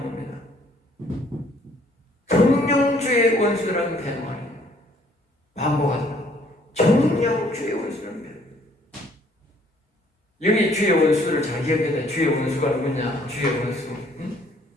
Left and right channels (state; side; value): normal; both; correlation 0.62